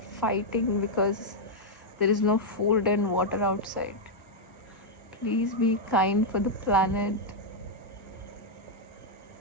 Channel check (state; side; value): normal; both; correlation -0.03